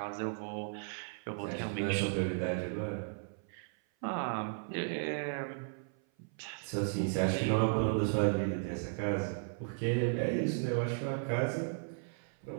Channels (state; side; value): silent; left; 54 dB below the other